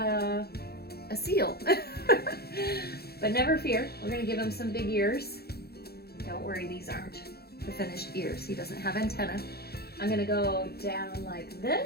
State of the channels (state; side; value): late; right; 0.46 ms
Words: seal. But never fear, we're gonna give him some big ears. Don't worry, these aren't the finished ears. He doesn't have antenna. I'm gonna go down like